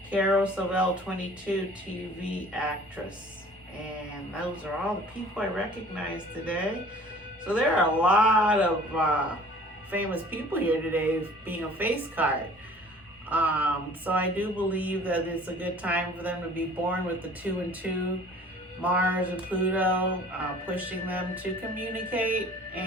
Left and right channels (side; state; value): both; normal; correlation 0.49